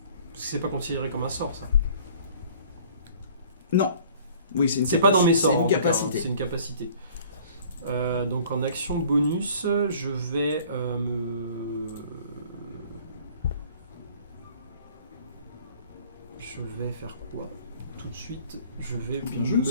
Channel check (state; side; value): inverted; both; correlation -0.52